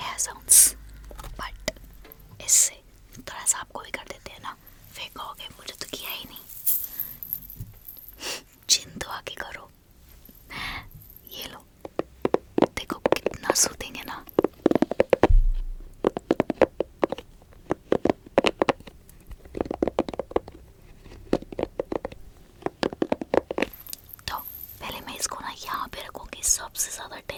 साउंड्स, बट इससे थोड़ा सा आपको भी कर देते हैं ना, फिर कहोगे मुझे तो किया ही नहीं। जिन तो आके करो। ये लो, देखो कितना सूदिंग है ना। तो पहले मैं इसको ना यहाँ पे रखूँगी, सबसे ज़्यादा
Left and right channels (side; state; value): both; identical; correlation 1.00